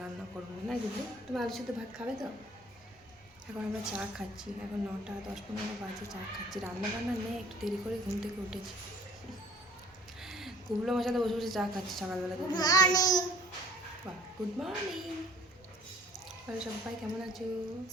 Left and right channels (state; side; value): normal; both; correlation 0.53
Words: রান্না করবো না। বুঝলি তুমি আলু সিদ্ধ ভাত খাবে তো? এখন আমরা চা খাচ্ছি, এখন 9টা 10-15 বাজে, চা খাচ্ছি। রান্না বান্না নেই, একটু দেরি করে ঘুম থেকে উঠেছি। কুবলো আমার সাথে বসে বসে চা খাচ্ছি সকালবেলা। বাহ, গুড মর্নিং। সবাই কেমন আছো?